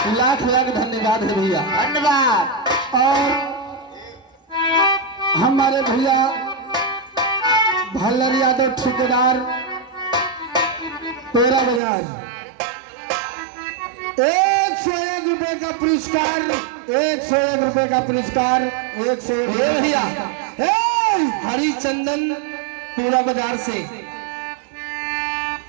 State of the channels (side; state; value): left; drops out; at 11.8 s